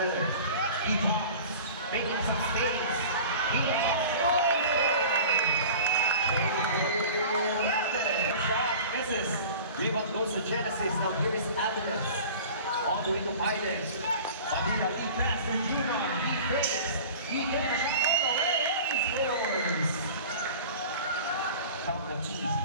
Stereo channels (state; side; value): inverted; both; correlation -0.40